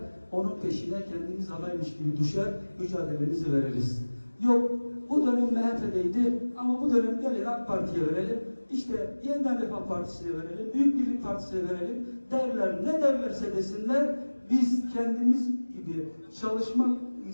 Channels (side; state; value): both; inverted; correlation -1.00